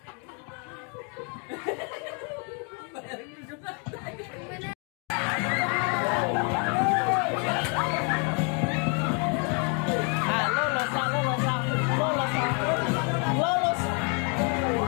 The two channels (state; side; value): quieter; right; 37.1 dB